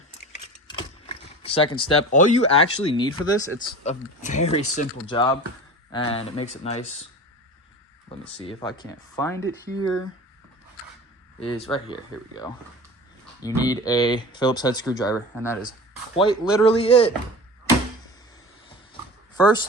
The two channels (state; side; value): normal; both; correlation 0.35